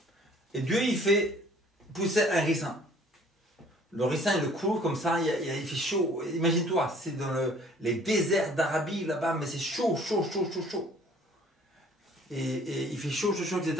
Et Dieu, il fait pousser un ricin. Le ricin, il le court comme ça, il fait chaud. Imagine-toi, c'est dans les déserts d'Arabie là-bas, mais c'est chaud. Et il fait chaud, etc.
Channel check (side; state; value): both; normal; correlation 0.55